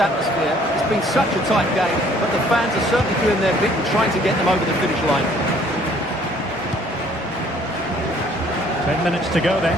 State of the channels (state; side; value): noise; left; rumble, 26 dB below the sound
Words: It's been such a tight game, but the fans are certainly doing their bit and trying to get them over the finish line. 10 minutes to go then.